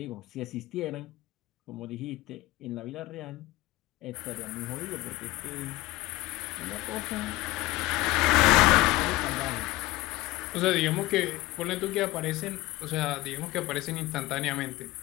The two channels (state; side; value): quieter; right; 18.8 dB